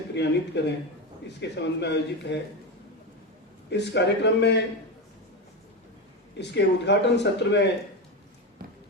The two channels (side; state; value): both; normal; correlation 0.17